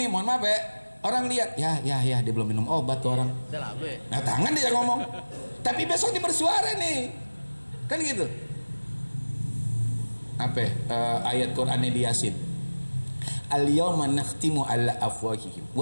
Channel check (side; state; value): both; inverted; correlation -1.00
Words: nih, mohon maaf ya, orang lihat ya dia belum minum obat tuh orang. Nah tangan dia ngomong, tapi besok dia bersuara nih, kan gitu. Ayat Quran di Yasin, al-yawma nakhtimu ala afwahihim